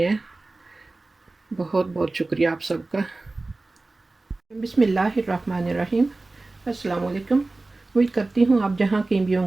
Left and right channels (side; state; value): left; quieter; 3.2 dB